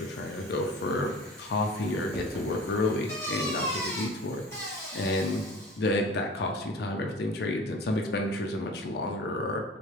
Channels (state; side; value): normal; both; correlation 0.41